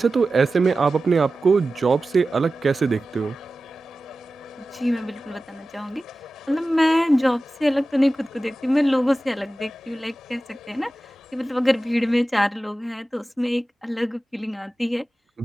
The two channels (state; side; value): normal; both; correlation 0.95